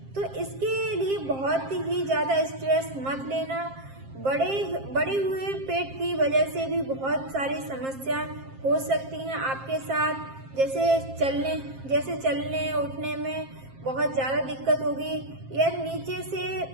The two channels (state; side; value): late; left; 7.5 ms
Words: तो इसके लिए बहुत ही ज्यादा स्ट्रेस मत लेना। बड़े हुए पेट की वजह से भी बहुत सारी समस्या हो सकती हैं आपके साथ, जैसे चलने उठने में बहुत ज्यादा दिक्कत होगी,